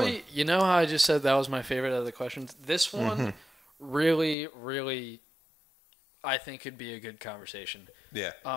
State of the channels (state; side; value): drops out; right; at 4.4 s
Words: going. you know how I just said that was my favorite of the questions? This one really, really, I think could be a good conversation. Yeah.